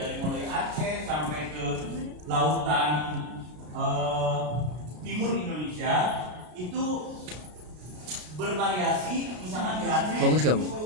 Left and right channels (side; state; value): left; late; 33 ms